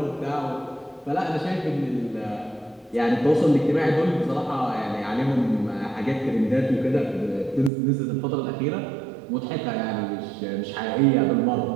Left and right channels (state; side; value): drops out; left; at 7.7 s